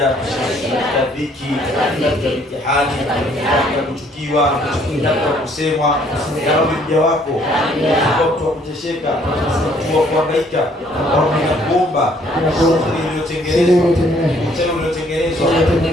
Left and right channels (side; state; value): both; normal; correlation 0.63